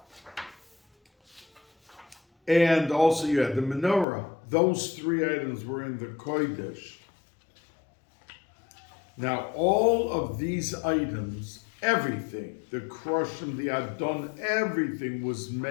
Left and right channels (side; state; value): right; drops out; at 4.0 s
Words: and also you had the Menorah. Those three items were in the Kodesh. Now, all of these items, everything, the Krushim, the Adon, everything was